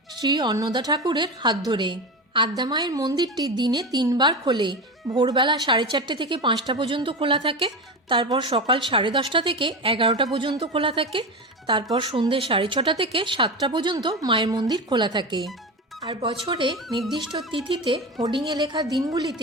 শ্রী অন্নদা ঠাকুরের হাত ধরে। আদ্যামায়ের মন্দিরটি দিনে 3 বার খোলে। ভোরবেলা 4:30 থেকে 5টা পর্যন্ত খোলা থাকে, তারপর সকাল 10:30 থেকে 11টা পর্যন্ত খোলা থাকে, তারপর সন্ধ্যে 6:30 থেকে 7টা পর্যন্ত মায়ের মন্দির খোলা থাকে। আর বছরে নির্দিষ্ট তিথিতে হোর্ডিংয়ে লেখা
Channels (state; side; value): normal; both; correlation 0.22